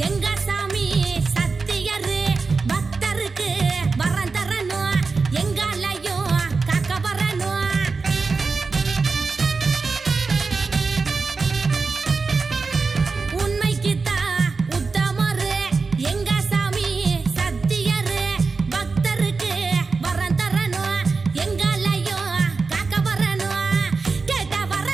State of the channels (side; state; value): left; quieter; 4.4 dB